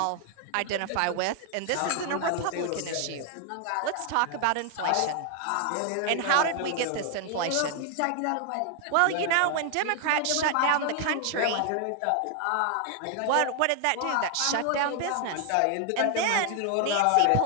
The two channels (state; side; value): different; both; correlation 0.00